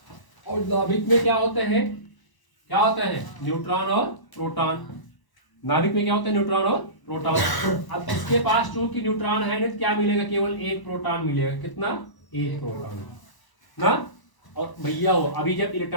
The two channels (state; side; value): late; right; 1.0 ms